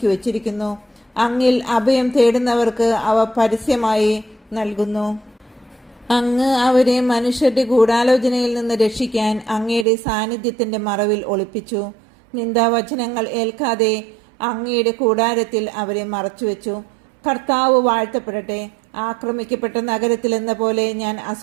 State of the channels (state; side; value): drops out; left; at 9.9 s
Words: വച്ചിരിക്കുന്നു. അങ്ങിൽ അഭയം തേടുന്നവർക്ക് അവ പരസ്യമായി നൽകുന്നു. അങ്ങ് അവരെ മനുഷ്യരുടെ ഗൂഢാലോചനയിൽ നിന്ന് രക്ഷിക്കാൻ അങ്ങയുടെ സാന്നിധ്യത്തിന്റെ മറവിൽ ഒളിപ്പിച്ചു. നിന്ദാവചനങ്ങൾ ഏൽക്കാതെ അങ്ങയുടെ കൂടാരത്തിൽ അവരെ മറച്ചുവെച്ചു. കർത്താവ് വാഴ്ത്തപ്പെടട്ടെ. ആക്രമിക്കപ്പെട്ട നഗരത്തിൽ എന്ന പോലെ ഞാൻ